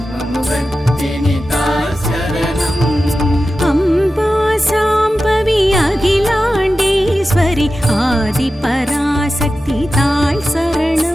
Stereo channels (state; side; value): normal; both; correlation 0.93